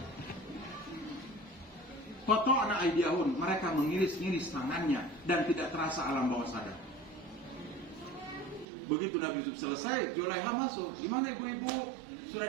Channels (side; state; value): left; drops out; at 8.7 s